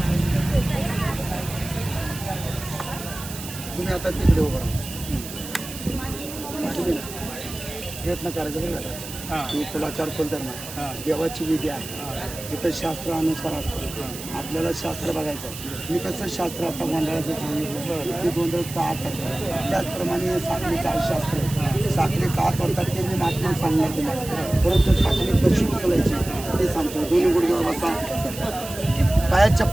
तुम्ही आता तिकडे उभं राहा. प्रयत्न करायचा बरं का की कुलाचार कुलधर्म देवाची विधी आहे. इथं शास्त्रानुसार असतं. आपल्याला शास्त्र बघायचं आहे. मी कसं शास्त्र आता गोंधळाचं सांगितलं ते गोंधळ का करतात त्याचप्रमाणे साखळीचं आहे शास्त्र. साखळी का करतात ते मी मात्र सांगणार तुम्हाला. परंतु साखळी कशी उचलायची ते सांगतो. दोन्ही गुडघ्यावर बसा. पायात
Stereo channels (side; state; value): right; noise; hiss, 11 dB below the sound